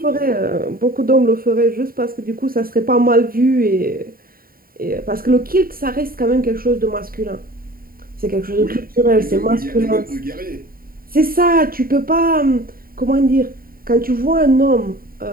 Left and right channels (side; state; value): left; late; 0.43 ms